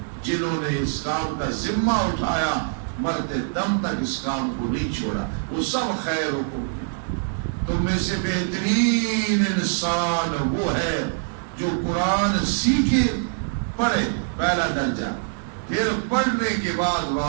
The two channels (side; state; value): left; silent; digital silence